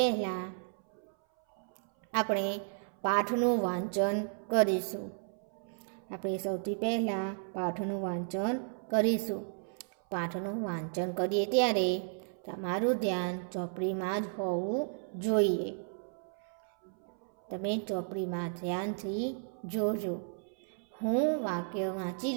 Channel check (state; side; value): silent; left; 56 dB below the other